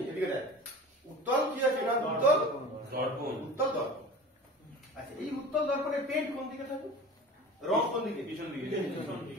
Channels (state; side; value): normal; both; correlation 0.38